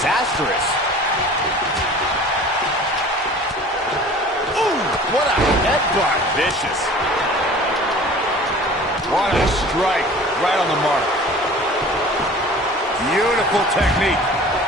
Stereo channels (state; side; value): normal; both; correlation 0.44